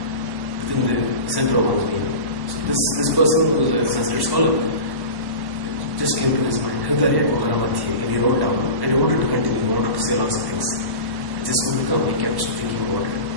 within the center of one's being. So this person who was a Sanskrit scholar, it just came to his mind, Hridaya Kuhara Madhye, and he wrote down, and he wanted to continue, he wanted to say lots of things. It just wouldn't come, he kept thinking about it.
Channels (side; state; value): left; late; 1.1 ms